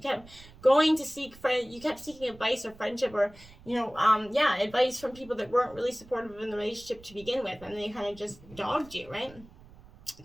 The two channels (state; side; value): noise; right; rumble, 21 dB below the sound